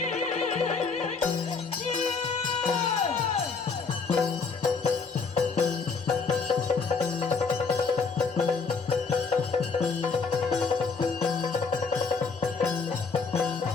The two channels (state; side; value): quieter; right; 4.9 dB